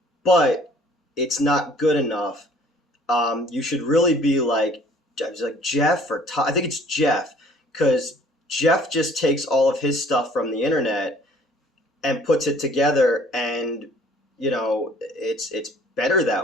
but it's not good enough. You should really be like," I was like, Jeff or Todd. I think it's Jeff, because Jeff just takes all of his stuff from the internet and puts it together, and it's better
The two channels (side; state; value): both; normal; correlation 0.55